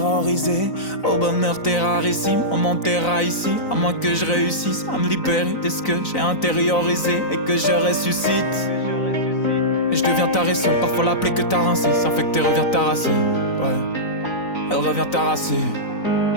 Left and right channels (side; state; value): right; late; 4.0 ms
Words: au bonheur terrarissime. On m'enterra ici, à moins que je réussisse à me libérer de ce que j'ai intériorisé et que je ressuscite. Et je deviens taré seul, parfois la plaie que t'as rincée s'infecter revient t'arraser, ouais, elle revient t'arraser.